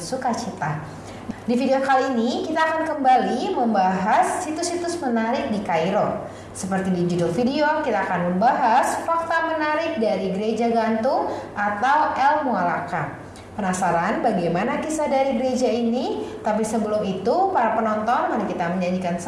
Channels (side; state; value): both; identical; correlation 1.00